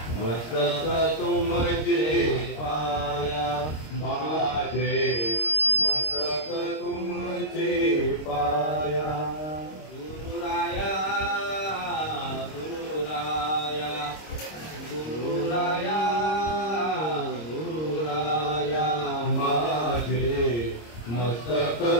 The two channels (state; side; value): late; right; 26 ms